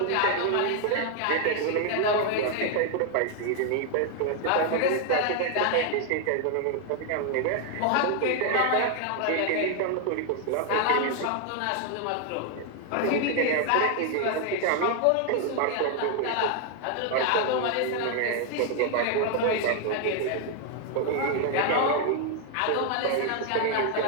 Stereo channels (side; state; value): both; different; correlation 0.00